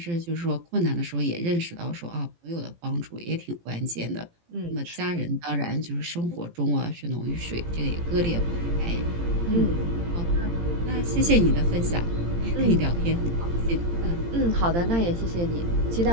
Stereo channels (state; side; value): late; left; 17 ms